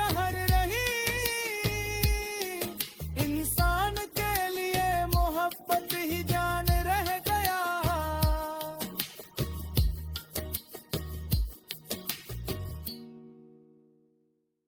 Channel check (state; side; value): identical; both; correlation 1.00